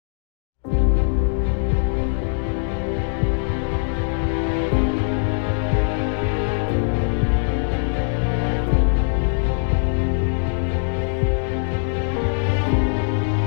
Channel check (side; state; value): right; silent; digital silence